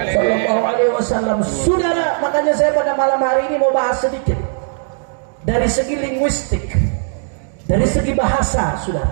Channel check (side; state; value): left; silent; digital silence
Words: sallallahu alaihi wasallam. Saudara, makanya saya pada malam hari ini mau bahas sedikit dari segi linguistik, dari segi bahasa,